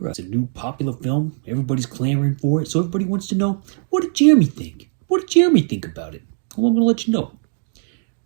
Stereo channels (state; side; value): silent; left; digital silence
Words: It's a new popular film. Everybody's clamoring for it. So everybody wants to know, what did Jeremy think? What did Jeremy think about it? Well, I'm going to let you know.